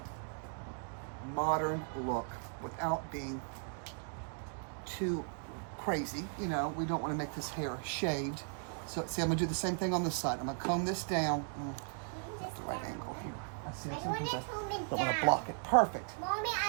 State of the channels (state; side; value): silent; left; 53 dB below the other